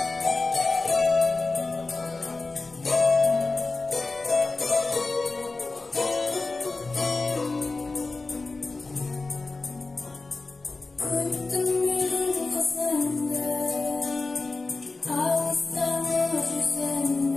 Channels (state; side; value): quieter; right; 3.6 dB